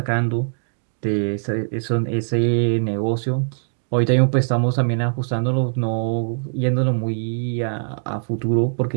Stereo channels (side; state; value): left; silent; digital silence